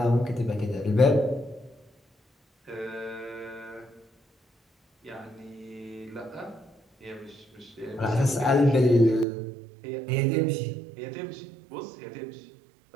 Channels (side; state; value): left; drops out; at 9.2 s